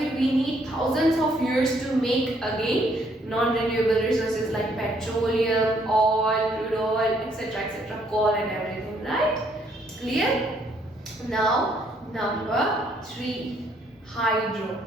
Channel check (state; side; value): normal; both; correlation 0.68